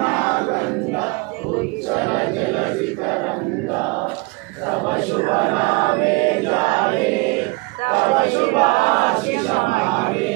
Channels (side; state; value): left; quieter; 27.1 dB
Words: गंगा उच्चल जलधि तरंगा तव शुभ नामे जाए तव शुभाशिष मागे